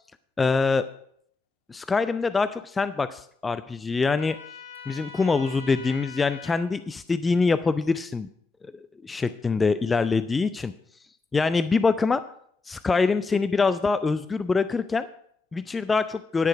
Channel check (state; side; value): quieter; right; 4.0 dB